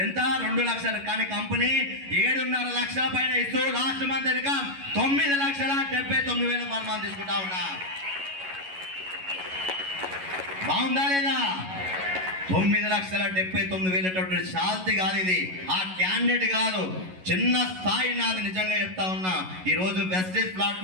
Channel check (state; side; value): late; left; 11 ms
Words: ఎంత? 2 లక్షలు. కానీ కంపెనీ 7.5 లక్షల పైన ఇస్తూ last month income 9,79,000 per month తీసుకుంటా ఉన్నా. బాగుందా లేదా? 9,79,000 శాంతి కాదు ఇది, ఆ క్యాండిడేట్ కాదు, చిన్న స్థాయి నాది. నిజంగా చెప్తా ఉన్నా, ఈరోజు వెస్టేజ్